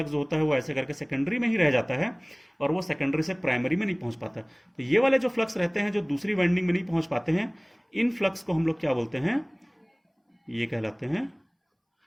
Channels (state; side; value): identical; both; correlation 1.00